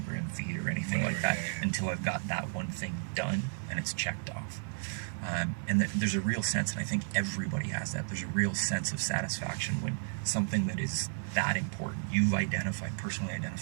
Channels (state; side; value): silent; left; digital silence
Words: feed or anything like that until I've got that one thing done and it's checked off. And there's a real sense, and I think everybody has that, there's a real sense of satisfaction when something that is that important, you've personally